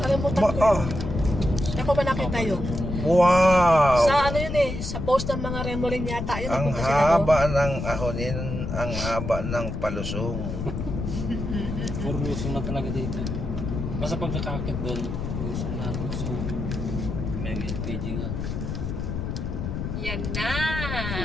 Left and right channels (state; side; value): noise; left; rumble, 4 dB below the sound